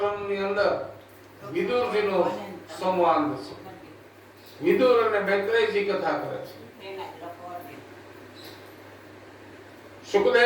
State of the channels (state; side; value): identical; both; correlation 1.00